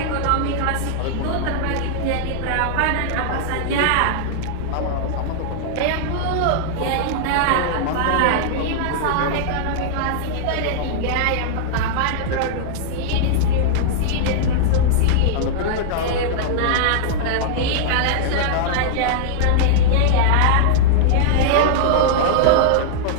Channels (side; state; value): both; different; correlation -0.01